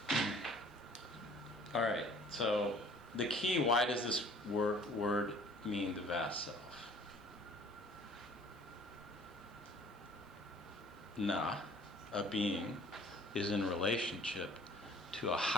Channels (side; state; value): both; normal; correlation 0.52